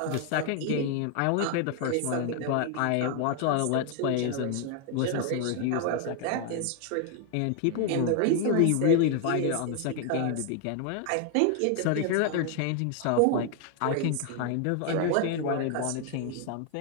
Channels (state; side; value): different; both; correlation 0.00